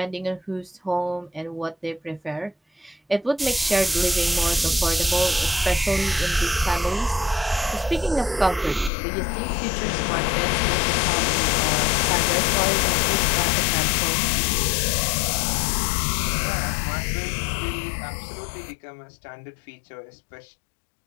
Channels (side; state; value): right; drops out; at 8.9 s